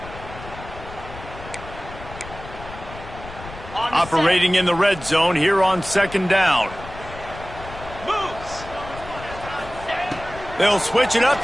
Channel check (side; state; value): left; noise; rumble, 14 dB below the sound